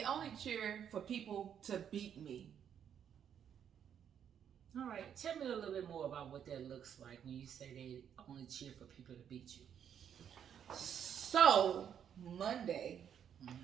only cheer for people to beat me. All right, tell me a little bit more about what that looks like when you say they only cheer for people to beat you. So, Monday,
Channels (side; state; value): left; quieter; 8.7 dB